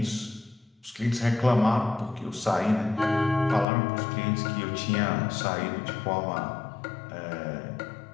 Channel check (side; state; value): right; drops out; at 3.7 s